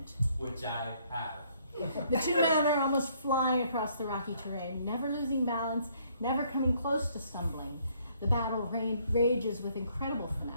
Which I have. The two men are almost flying across the rocky terrain, never losing balance, never coming close to stumbling. The battle rages with incredible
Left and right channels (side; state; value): both; inverted; correlation -0.66